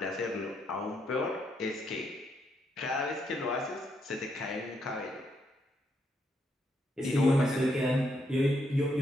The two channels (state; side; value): normal; both; correlation 0.77